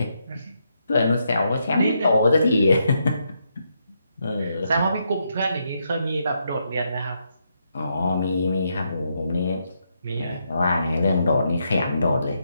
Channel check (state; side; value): inverted; both; correlation -0.80